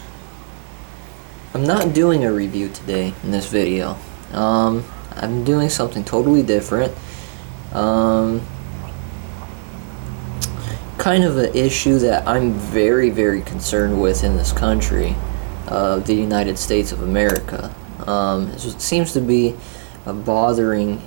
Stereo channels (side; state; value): left; silent; digital silence